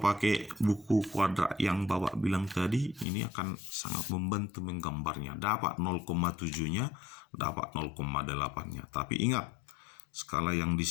buku kuadrat yang Bapak bilang tadi, ini akan sangat membantu menggambarnya. Dapat 0,7-nya, dapat 0,8-nya. Tapi ingat, skala yang di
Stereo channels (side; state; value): right; drops out; at 3.1 s